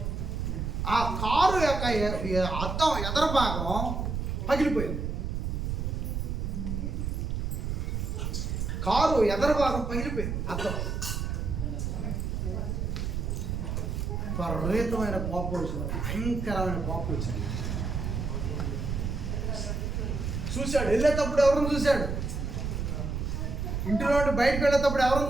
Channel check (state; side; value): noise; right; rumble, 2 dB below the sound